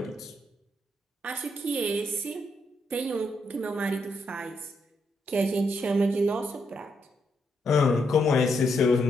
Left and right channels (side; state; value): both; normal; correlation 0.79